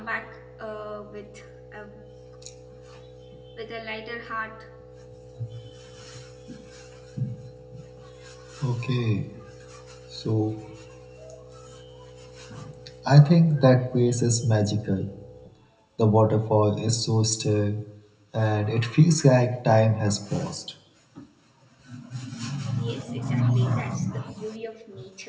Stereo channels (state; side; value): identical; both; correlation 1.00